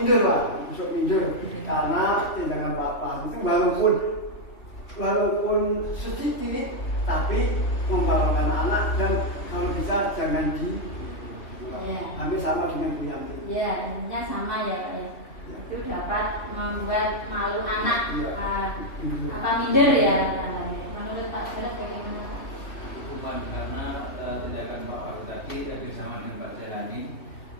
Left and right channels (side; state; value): right; late; 3.0 ms